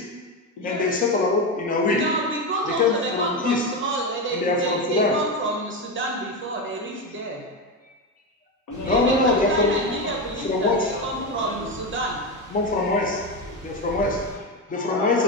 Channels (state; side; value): normal; both; correlation 0.14